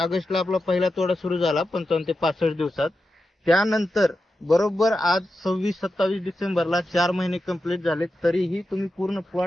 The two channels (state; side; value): normal; both; correlation 0.90